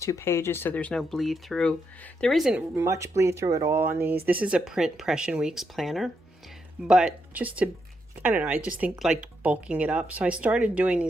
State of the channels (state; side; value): normal; both; correlation 0.80